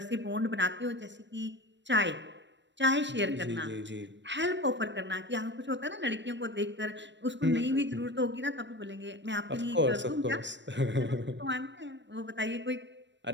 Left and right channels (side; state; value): left; late; 0.53 ms